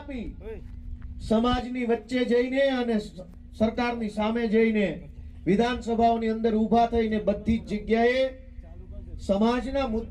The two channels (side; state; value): both; identical; correlation 1.00